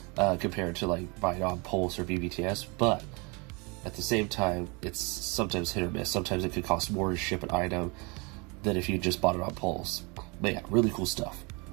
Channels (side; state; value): left; quieter; 29.6 dB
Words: compared to like buying on Pulse or BBTS, but at the same time, it's sometimes hit or miss. Sometimes it could cost more to ship an item than if you just bought it on Pulse. But yeah, really cool stuff.